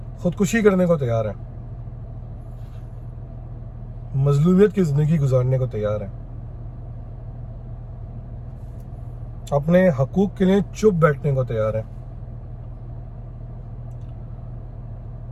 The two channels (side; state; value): both; identical; correlation 1.00